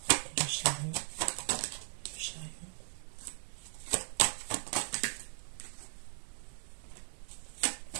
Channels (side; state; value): left; silent; digital silence